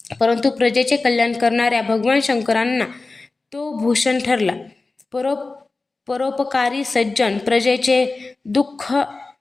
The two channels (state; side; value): quieter; right; 3.6 dB